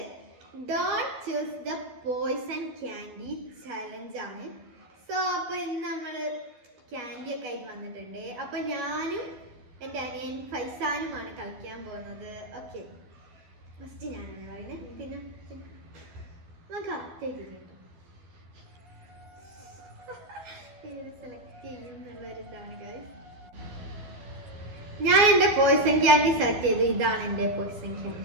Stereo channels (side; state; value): left; late; 13 ms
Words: Don't choose the poison candy challenge ആണ്. സോ അപ്പോൾ ഇന്ന് നമ്മൾ ക്യാൻഡി ഒക്കെ ആയിട്ട് വന്നിട്ടുണ്ട്. അപ്പോൾ ഞാനും എൻ്റെ അനിയൻ ഫൈസാനുമാണ് കളിക്കാൻ പോകുന്നത്. ഓക്കെ, ഫസ്റ്റ് ഞാനാണ് പറയുന്നത്. പിന്നെ നമുക്ക് അത്തേക്ക് കേട്ടോ സെലക്ട് ചെയ്യും എന്നുള്ളൊരിതാണ് ഗൈസ്. ഞാൻ എൻ്റെ പോയ്സൺ ക്യാൻഡി സെലക്ട് ചെയ്തു. ഇതാണ് എൻ്റെ പോയ്സൺ